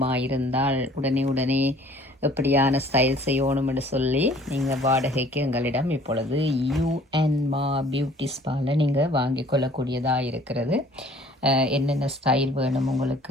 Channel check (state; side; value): normal; both; correlation 0.53